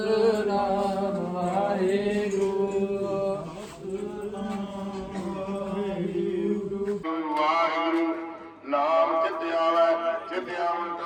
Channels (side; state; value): both; identical; correlation 1.00